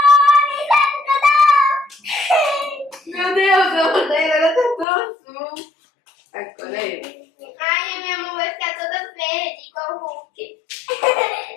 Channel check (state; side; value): drops out; right; at 4.9 s